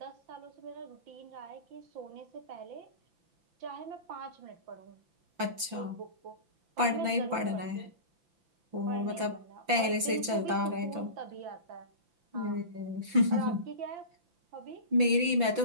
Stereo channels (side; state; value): left; late; 5.9 ms